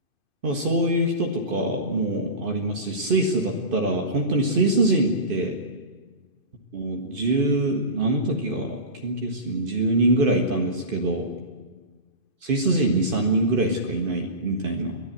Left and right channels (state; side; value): late; left; 2.5 ms